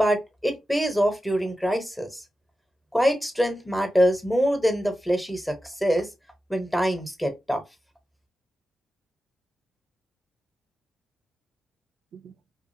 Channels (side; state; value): both; normal; correlation 0.92